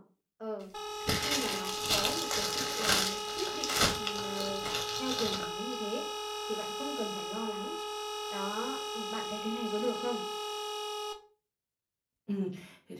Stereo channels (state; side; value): identical; both; correlation 1.00